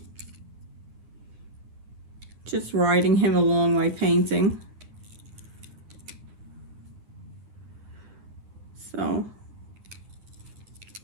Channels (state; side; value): late; left; 9.8 ms